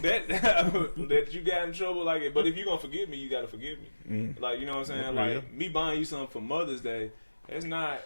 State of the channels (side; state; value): both; inverted; correlation -1.00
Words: that that you got in trouble like it. But if you're gonna forgive me, you gotta forgive me. Like, you know what I'm saying? Like me buying you something for Mother's Day, that's not